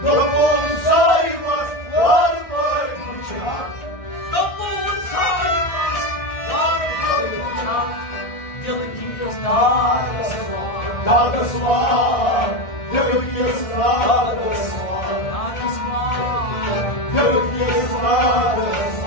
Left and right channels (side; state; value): right; late; 1.6 ms